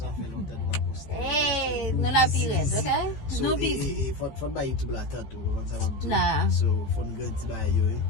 fait longtemps de pas poster. Hey, nous la pire, ok? So, nous busy. faut pas YouTube là tant tout. Nah. So, faut nous grandir ba yo.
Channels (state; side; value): late; right; 15 ms